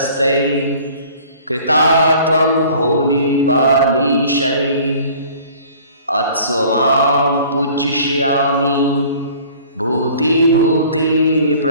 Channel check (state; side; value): inverted; both; correlation -0.50